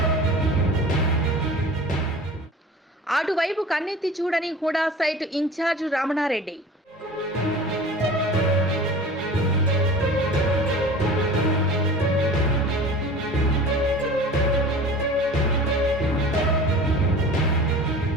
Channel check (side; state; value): both; normal; correlation 0.40